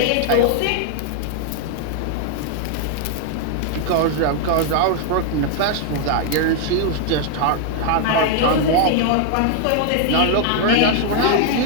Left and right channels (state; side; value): different; both; correlation 0.00